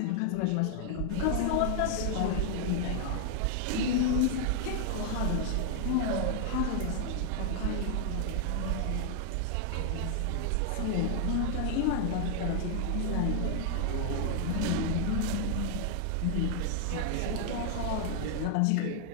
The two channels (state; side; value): different; both; correlation 0.00